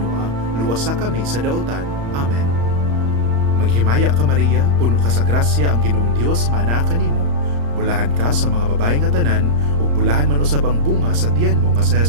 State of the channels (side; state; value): left; late; 35 ms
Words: luwasa kami sa daotan. Amen. Maghimaya ka Maria, puno ka sa grasya, ang Ginoong Dios maanaa kanimo. Bulahan ka sa mga babae nga tanan, ug bulahan man usab ang bunga sa tiyan mo nga si